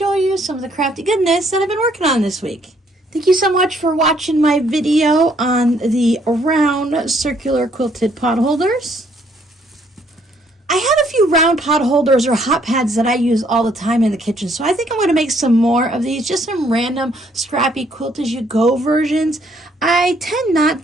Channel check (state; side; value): normal; both; correlation 0.67